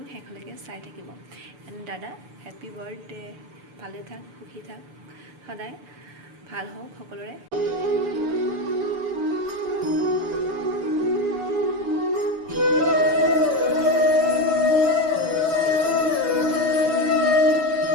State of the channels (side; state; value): left; late; 6.9 ms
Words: শেষলৈকে চাই থাকিব। এণ্ড দাদা, হেপী বাৰ্থডে, ভালে থাক, সুখী থাক, সদায় ভাল হওক সকলোৰে।